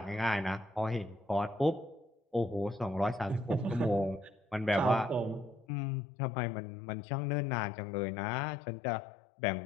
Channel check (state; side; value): drops out; right; at 5.7 s